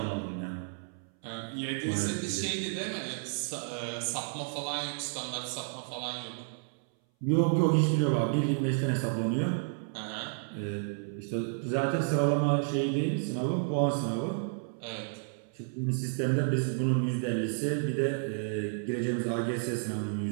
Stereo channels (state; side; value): silent; left; 57 dB below the other